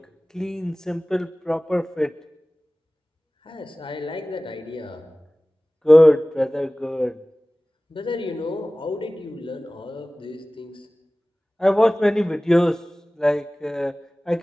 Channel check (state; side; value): normal; both; correlation 0.98